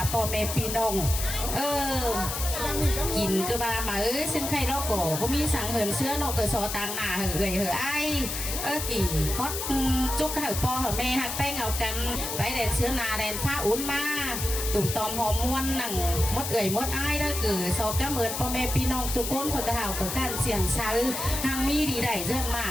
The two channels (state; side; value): noise; left; hiss, 4 dB below the sound